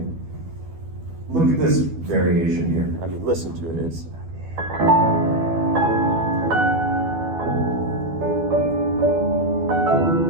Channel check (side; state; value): left; late; 12 ms